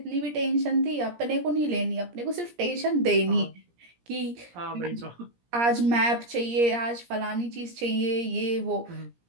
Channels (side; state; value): left; late; 17 ms